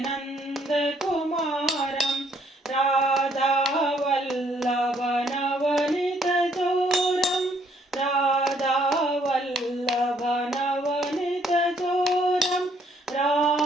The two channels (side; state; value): both; normal; correlation 0.67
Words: नन्दकुमारं राधावल्लभनवनीतचोरं राधावल्लभनवनीतचोरं